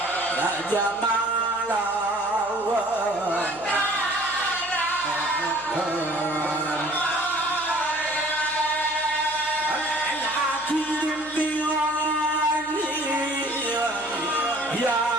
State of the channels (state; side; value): noise; left; hum, 25 dB below the sound